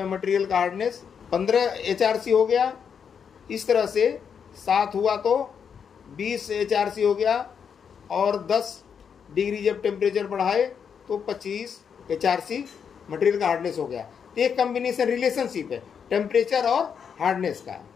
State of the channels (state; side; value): quieter; right; 7.1 dB